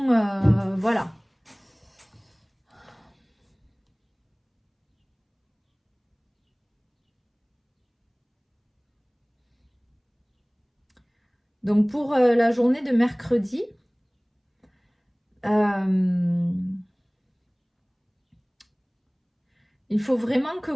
voilà. Donc pour la journée de mercredi, il faut vraiment que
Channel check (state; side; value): identical; both; correlation 1.00